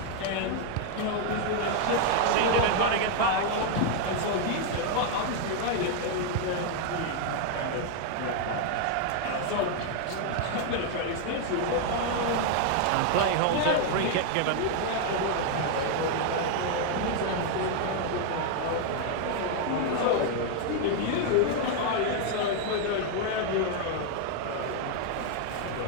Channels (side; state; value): both; different; correlation 0.00